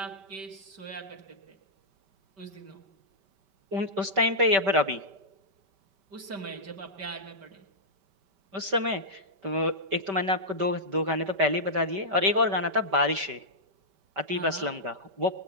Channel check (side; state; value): left; late; 5.2 ms